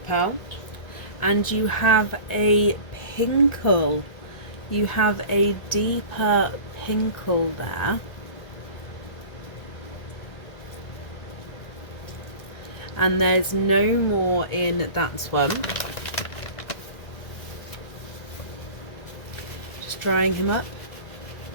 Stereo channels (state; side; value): late; right; 1.9 ms